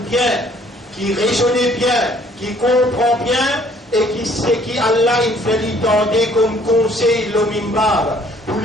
bien, qui raisonne bien, qui comprend bien et qui sait qui Allah il fait lui tendre comme conseil le mimbar. Pour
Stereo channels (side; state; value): both; normal; correlation 0.60